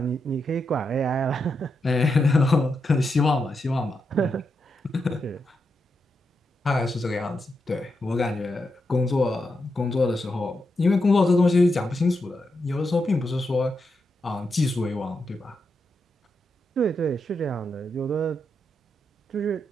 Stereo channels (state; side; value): normal; both; correlation 0.85